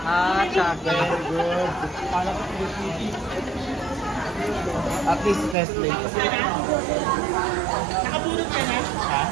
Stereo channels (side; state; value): left; drops out; at 5.6 s